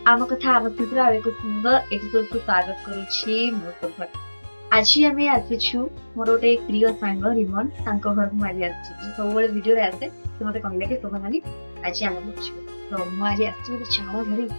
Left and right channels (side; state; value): both; inverted; correlation -1.00